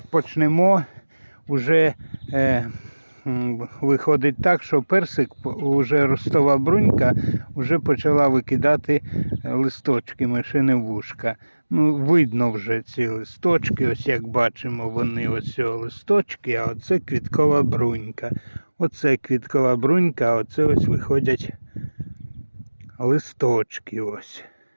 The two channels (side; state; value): both; inverted; correlation -1.00